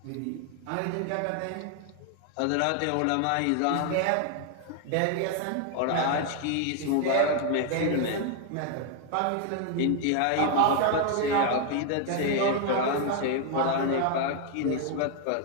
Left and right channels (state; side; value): different; both; correlation 0.00